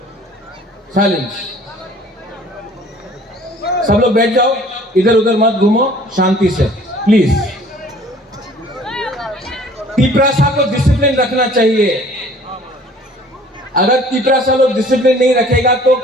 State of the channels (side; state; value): both; normal; correlation 0.52